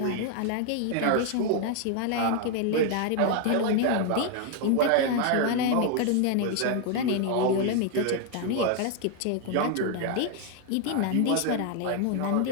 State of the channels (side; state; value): both; different; correlation 0.00